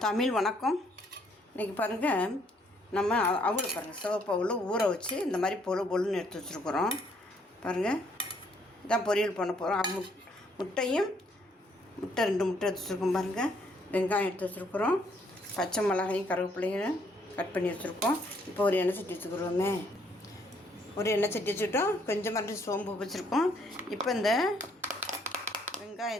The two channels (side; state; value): both; normal; correlation 0.67